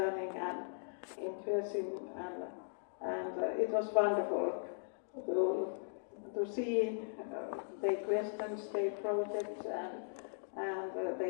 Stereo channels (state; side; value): silent; right; digital silence